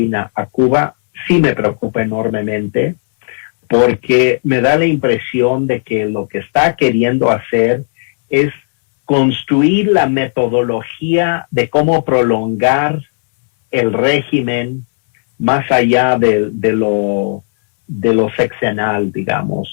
a Cuba sí me preocupa enormemente, porque me da la impresión de que lo que está queriendo hacer es construir la metodología de cómo prolongar el régimen más allá de lo sexenal,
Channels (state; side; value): silent; right; digital silence